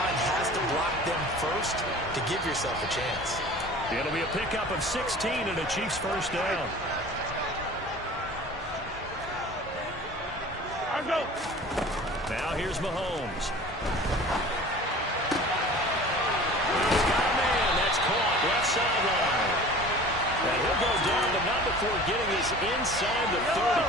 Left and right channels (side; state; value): both; normal; correlation 0.42